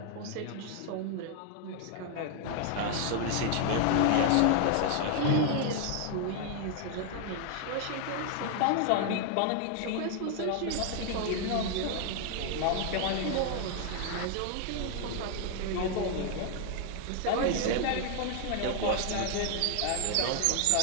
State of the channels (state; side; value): different; both; correlation 0.00